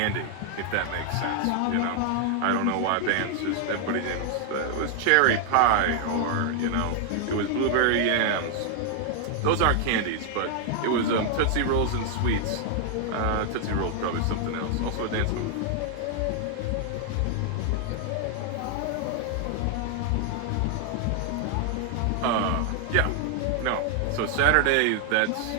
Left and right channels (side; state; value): both; different; correlation 0.00